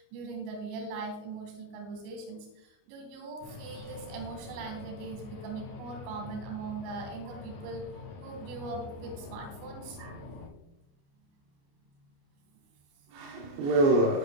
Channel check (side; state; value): left; late; 29 ms